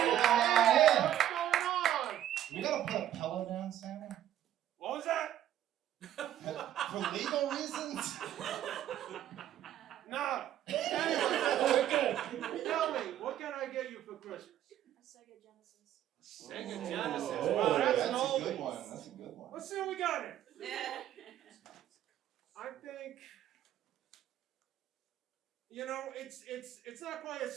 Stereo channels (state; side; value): quieter; left; 11.8 dB